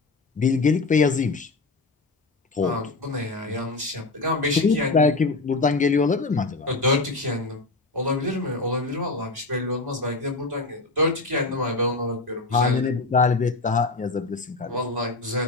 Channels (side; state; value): right; quieter; 3.6 dB